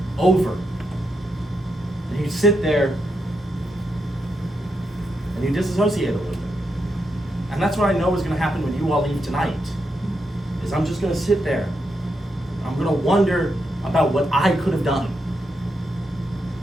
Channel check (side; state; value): both; normal; correlation 0.83